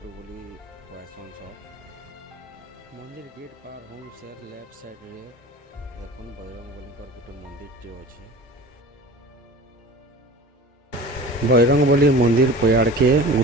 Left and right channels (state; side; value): normal; both; correlation 0.38